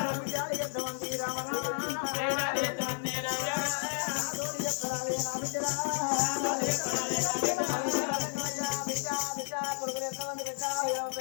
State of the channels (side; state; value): right; silent; digital silence